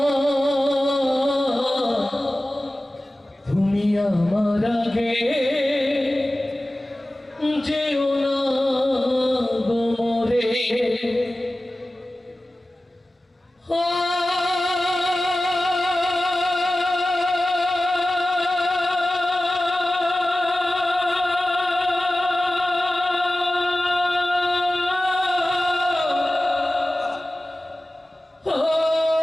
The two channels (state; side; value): normal; both; correlation 0.96